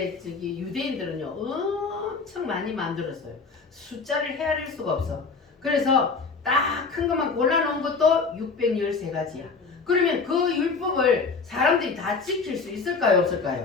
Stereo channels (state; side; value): quieter; right; 4.6 dB